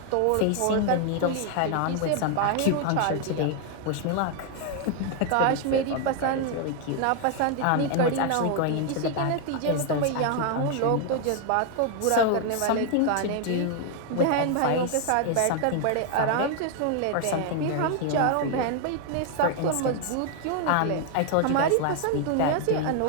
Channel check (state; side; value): different; both; correlation 0.00